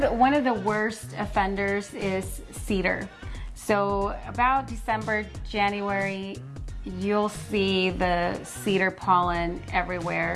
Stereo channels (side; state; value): both; identical; correlation 1.00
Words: One of the worst offenders is cedar. So about December, January, you'll see the cedar pollen